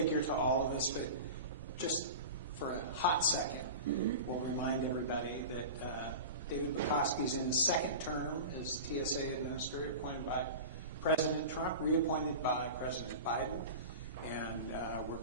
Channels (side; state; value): both; inverted; correlation -0.30